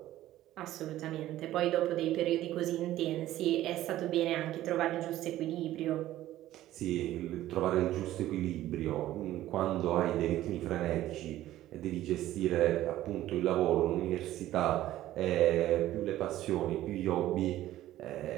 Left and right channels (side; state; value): left; quieter; 14.3 dB